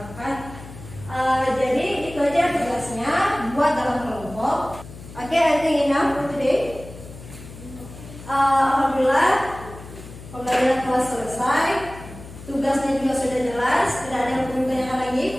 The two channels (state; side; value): noise; left; hum, 15 dB below the sound